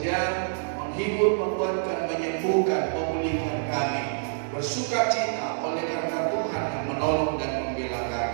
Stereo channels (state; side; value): silent; left; digital silence